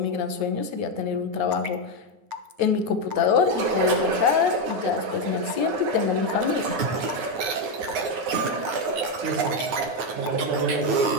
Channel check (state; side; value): late; left; 9.3 ms